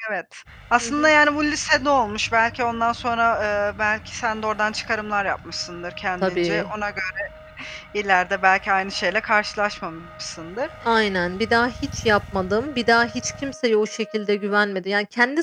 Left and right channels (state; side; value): identical; both; correlation 1.00